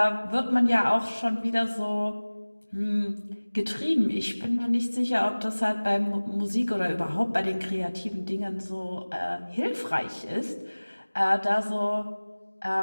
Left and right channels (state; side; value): inverted; both; correlation -1.00